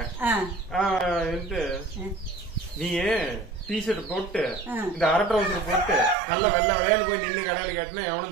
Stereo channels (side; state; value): left; drops out; at 6.2 s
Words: நீ டிஷர்ட் போட்டு இந்த அரை ட்ரவுசர் போட்டு நல்லா வெள்ளை விளையாண்டு போய் நின்று கடையில கேட்டினா